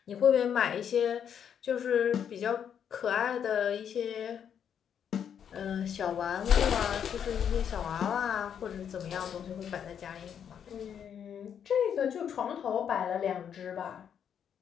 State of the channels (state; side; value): quieter; right; 8.4 dB